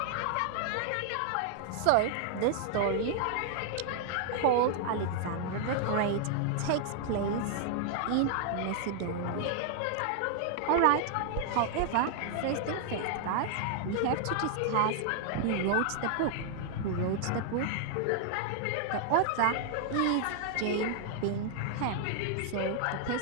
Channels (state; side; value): different; both; correlation 0.00